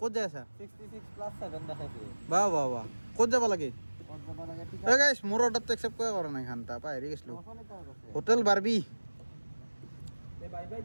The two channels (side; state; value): both; inverted; correlation -1.00